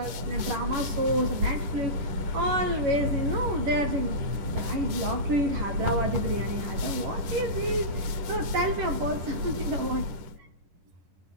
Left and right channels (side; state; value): left; late; 10 ms